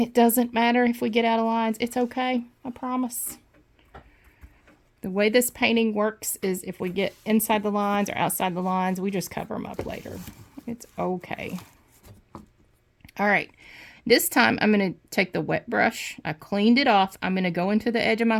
doesn't matter if we get out of lines. It's okay, I promise. The way this painting works is if we get inside the lines or outside the lines, we just cover them up later. It's okay. All right. This time I'm going to take the wet brush. I cleaned it off. I'm going to go into the edge of my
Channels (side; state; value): both; identical; correlation 1.00